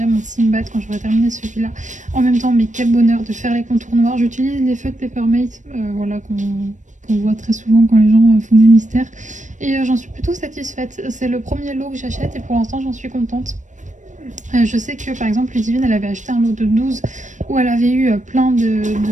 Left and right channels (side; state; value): left; late; 0.36 ms